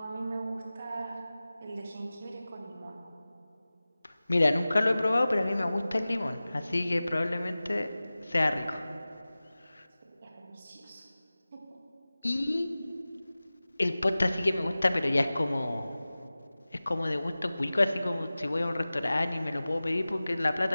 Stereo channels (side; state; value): both; inverted; correlation -0.97